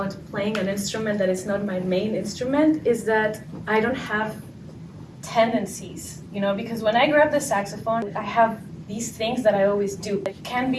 playing an instrument that is not my main instrument is that I don't have tendencies, because when I grab the saxophone, I have these things that I always do. It can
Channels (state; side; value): identical; both; correlation 1.00